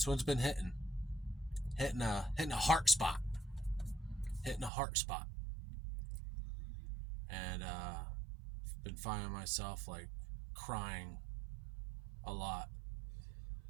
been hitting a heart spot, and been finding myself like crying a lot,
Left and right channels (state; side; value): drops out; left; at 4.7 s